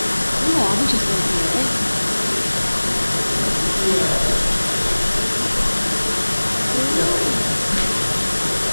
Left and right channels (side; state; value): both; inverted; correlation -1.00